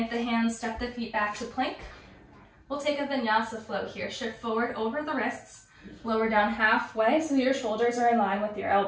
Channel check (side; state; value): both; identical; correlation 1.00